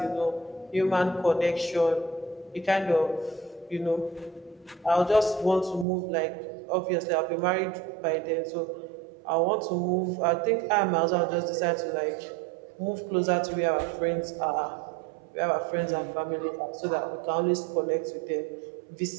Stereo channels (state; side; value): drops out; left; at 5.9 s